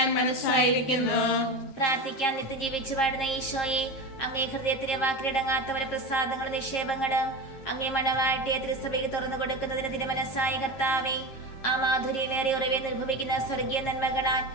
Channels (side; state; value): right; late; 7.5 ms